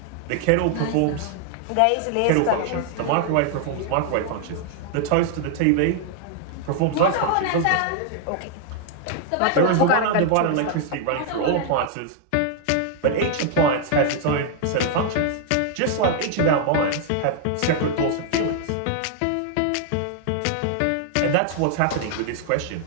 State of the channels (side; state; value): both; different; correlation 0.00